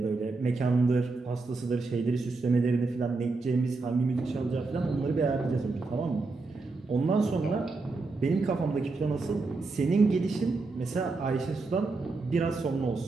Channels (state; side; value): quieter; left; 3.7 dB